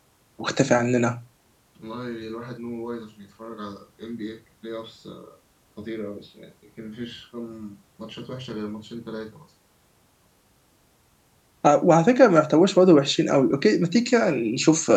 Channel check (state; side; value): identical; both; correlation 1.00